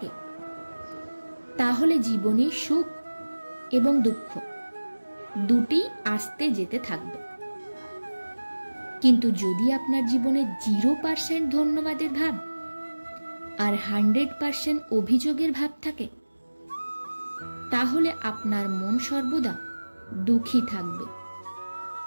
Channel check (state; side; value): inverted; both; correlation -1.00